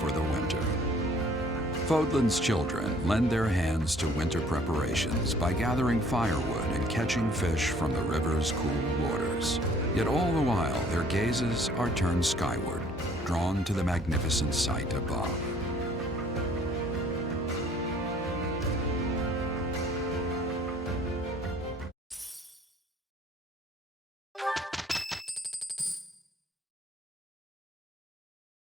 the winter. Fodlan's children lend their hands to winter preparations by gathering firewood and catching fish from the river's cool waters. Yet all the while, their gazes are turned skyward, drawn to the magnificent sight above.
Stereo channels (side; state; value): both; normal; correlation 0.57